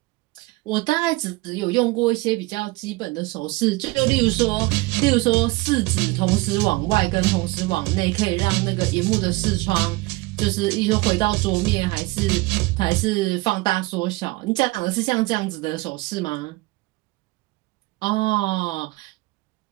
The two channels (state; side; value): quieter; left; 22.3 dB